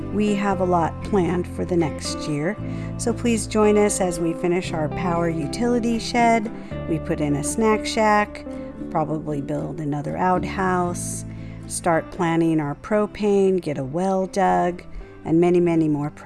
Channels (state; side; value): identical; both; correlation 1.00